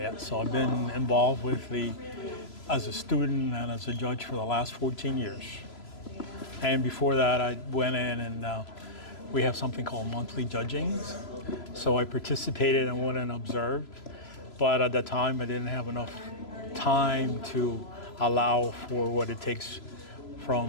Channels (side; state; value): right; late; 3.0 ms